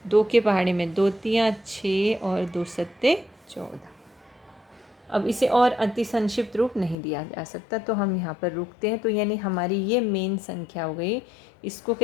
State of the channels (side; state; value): right; drops out; at 7.0 s